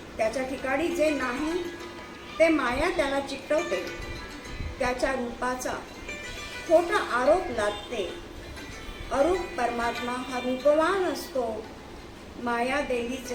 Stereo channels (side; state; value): both; identical; correlation 1.00